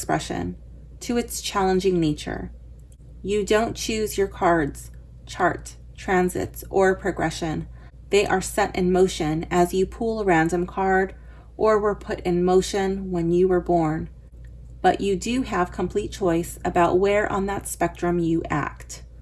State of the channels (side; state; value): both; identical; correlation 1.00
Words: to its challenging nature. You don't choose your cards, chart, transits, or progression. They are set in motion as you pull a random card or were put in motion when you were born. But you do have complete choice about where on that spectrum you act.